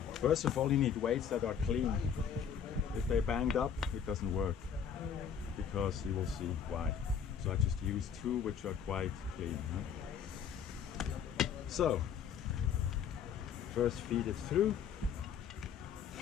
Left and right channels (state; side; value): quieter; right; 7.7 dB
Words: First of all, you need weights that are clean. If they're banged up, it doesn't work, because you will see why. So I just use 2 which are quite clean. Huh? So, first feed it through,